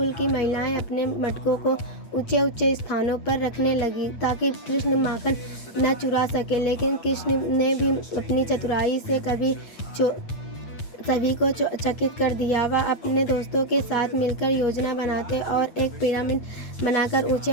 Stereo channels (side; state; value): right; late; 8.6 ms